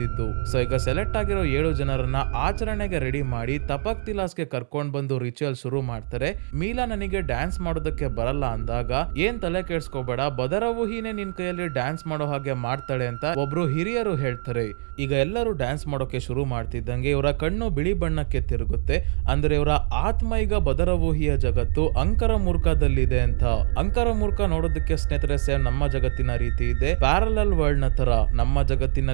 ಸೊ ಈಗ ಸೆಲೆಕ್ಟ್ ಆಗಿರೋ 7 ಜನರನ್ನ ಆಚರಣೆಗೆ ರೆಡಿ ಮಾಡಿ ತಪಕ್ ತಿಲಾಸ್ಗೆ ಕರ್ಕೊಂಡ್ ಬಂದು ರಿಚುವಲ್ ಶುರು ಮಾಡ್ತಾರೆ. ಮೀಲಾ ನನಗೆ ಡ್ಯಾನ್ಸ್ ಮಾಡೋದಕ್ಕೆ ಬರಲ್ಲ ಅಂದಾಗ ಏನ್ ತಲೆ ಕೆಡ್ಸ್ಕೋಬೇಡ, ಬದರವೂಹಿನೇ ನಿನ್ ಕೈಯಲ್ಲಿ ಡ್ಯಾನ್ಸ್ ಮಾಡೋ ಹಾಗೆ ಮಾಡ್ತಾಳೆ ಅಂತ ಒಬ್ರು ಹಿರಿಯರು ಹೇಳ್ತಾರೆ. ಈಗ ಎಲ್ಲರೂ ಡ್ಯಾನ್ಸ್ ಮಾಡೋಕೆ ಶುರು ಮಾಡ್ತಿದ್ದಂಗೆ ಇವರ ಕಣ್ಣು ಬಿಳಿ ಬಣ್ಣಕ್ಕೆ ತಿರುಗುತ್ತೆ. ಅಂದ್ರೆ ಇವರ ಆತ್ಮ ಈಗ ಬದರವೂಹಿಯ ಜಗತ್ತು ಅಂಕರಮೂರ್ಖದಲ್ಲಿದೆ ಅಂತ. ಅಂಕರಮೂರ್ಖ ನೋಡೋದಕ್ಕೆ ಸ್ನೇಹಿತರೆ ಸೇಮ್ ನಮ್ಮ ಜಗತ್ತಿನ ರೀತಿ ಇದೆ, ಪ್ಯಾರಲಲ್ ವರ್ಲ್ಡ್ ನ ತರ. ನಮ್ಮ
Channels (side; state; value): left; silent; digital silence